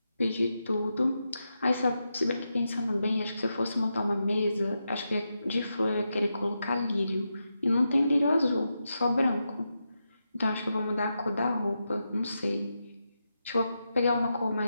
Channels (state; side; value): inverted; both; correlation -0.87